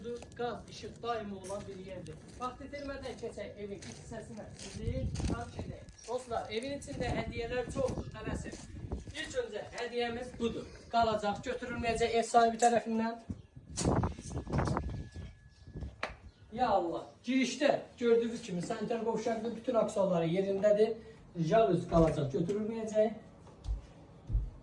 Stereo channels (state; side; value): identical; both; correlation 1.00